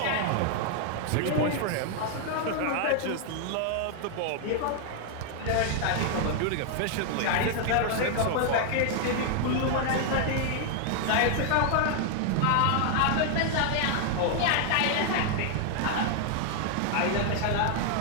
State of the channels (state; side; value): different; both; correlation 0.00